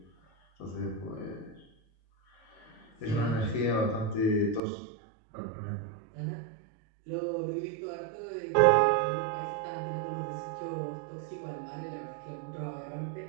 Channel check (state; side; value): drops out; left; at 4.6 s